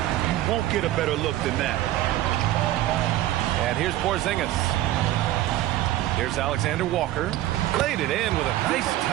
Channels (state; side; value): quieter; left; 14.6 dB